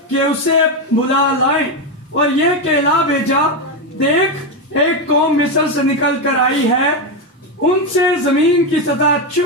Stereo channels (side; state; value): both; normal; correlation 0.09